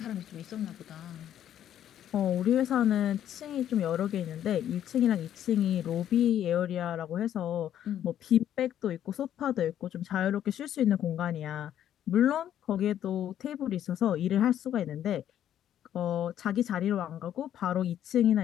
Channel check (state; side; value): quieter; right; 10.7 dB